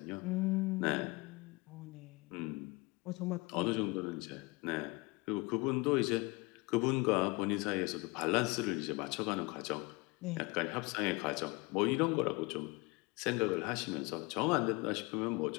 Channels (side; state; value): right; quieter; 25.8 dB